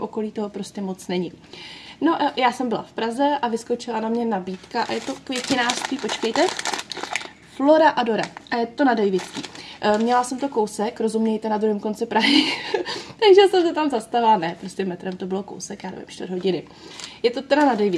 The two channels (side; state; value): both; identical; correlation 1.00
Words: toho prostě moc není. No já jsem byla v Praze a vyskočila na mě nabídka a je to květinářství, počkejte, Flora Adora a je to na Davidský. Měla jsem to kousek, rozumějte, na druhém konci Prahy, takže jsem se tam zastavila, ne, prostě metrem to bylo kousek, já nevím, 4 hodiny. Je to teda na